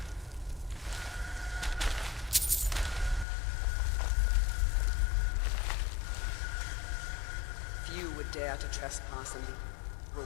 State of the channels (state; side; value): drops out; right; at 3.2 s